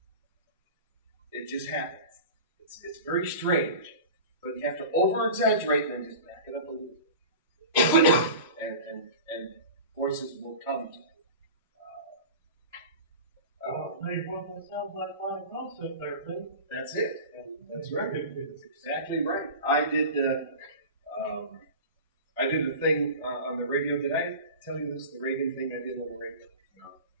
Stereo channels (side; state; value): both; inverted; correlation -0.34